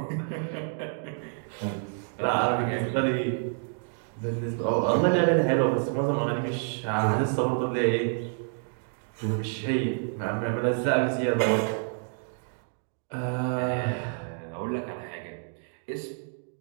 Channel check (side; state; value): left; silent; 59 dB below the other